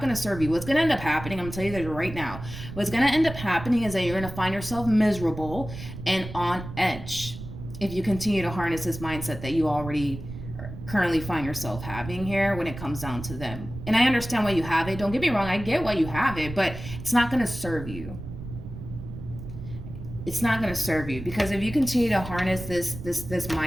to serve you. What's going to end up happening, I'm going to tell you that right now, what's going to end up happening is that you're going to find yourself miserable and on edge if you continue to harness this mindset that you already currently find yourself having here when it comes down to them. And I understand why you have it. Don't get me wrong. I get why you have it, but it's not going to serve you. It's not going to serve you, because if you continue to harness this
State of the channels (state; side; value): noise; right; rumble, 11 dB below the sound